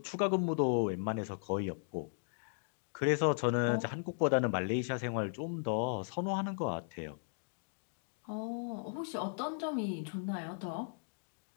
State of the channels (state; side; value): silent; right; digital silence